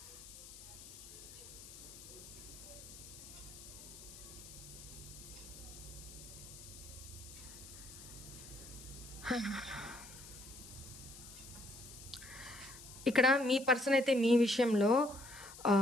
ఇక్కడ మీ పర్సన్ అయితే మీ విషయంలో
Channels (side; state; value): left; noise; hiss, 15 dB below the sound